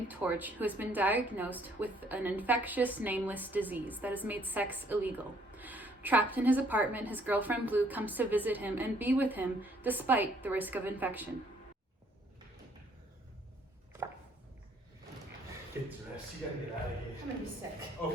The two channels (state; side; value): normal; both; correlation 0.64